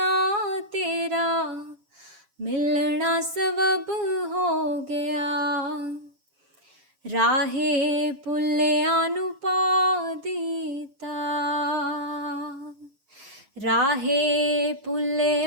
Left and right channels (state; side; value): late; left; 7.4 ms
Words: ਤੇਰਾ ਮਿਲਣਾ ਸਬਬ ਹੋ ਗਿਆ। ਰਾਹੇ ਪੁੱਲਿਆਂ ਨੂੰ ਪਾ ਦਿੱਤਾ, ਰਾਹੇ